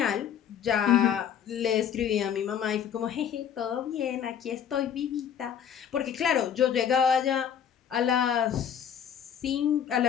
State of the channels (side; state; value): right; quieter; 8.6 dB